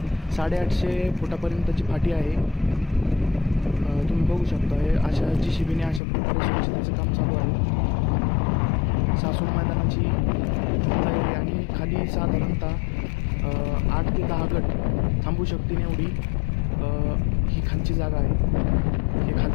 850 फुटापर्यंतची फाटी आहे। तुम्ही बघू शकता हे अशा JCBने अशा प्रकारे स्वच्छतेचं काम चालू आहे। सासवड मैदानाची तयारी आणि खाली साधारणतः 8 ते 10 गट थांबू शकतील एवढी ही खालची जागा आहे। हे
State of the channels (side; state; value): right; drops out; at 6.0 s